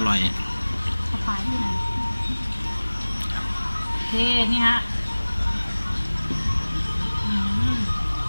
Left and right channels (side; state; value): both; inverted; correlation -1.00